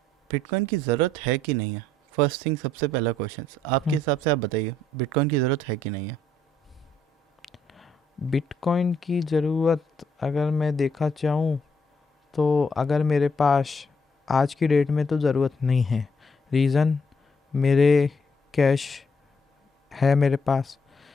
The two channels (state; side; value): normal; both; correlation 0.71